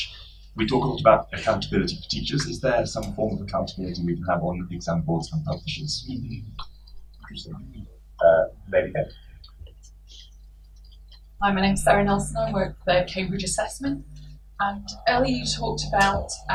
We talk a lot about accountability for teachers. Is there some form of accountability we can have on exam boards and publishers? Hi, my name's Sarah Nelson. I work for Cambridge Assessment. And earlier you talked about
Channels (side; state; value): both; identical; correlation 1.00